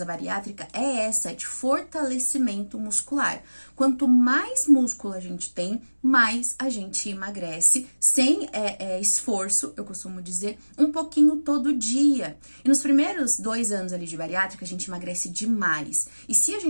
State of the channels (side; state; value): both; inverted; correlation -1.00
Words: a bariátrica é essa, de fortalecimento muscular. Quanto mais músculo a gente tem, mais a gente emagrece, sem esforço, eu costumo dizer, um pouquinho todo dia. E nos primeiros 2 anos ali de bariátrica, a gente emagrece demais. E se a